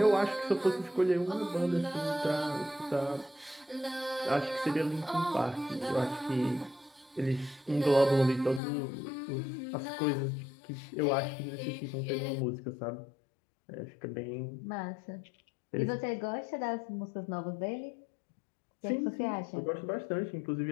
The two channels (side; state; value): right; drops out; at 8.6 s